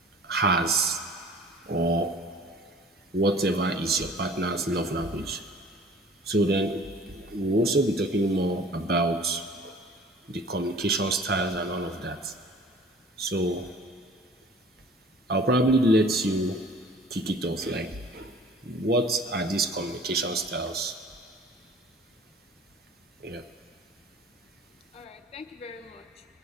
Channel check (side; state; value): both; normal; correlation 0.48